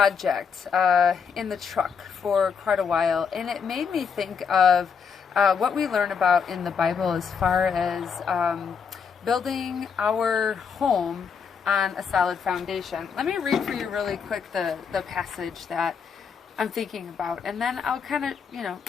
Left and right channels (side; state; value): right; quieter; 6.4 dB